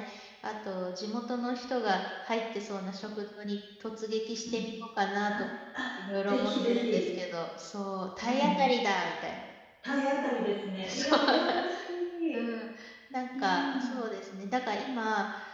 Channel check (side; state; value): both; identical; correlation 1.00